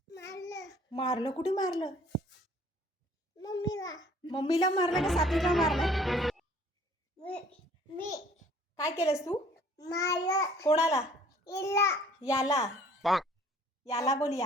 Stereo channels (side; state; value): both; normal; correlation 0.55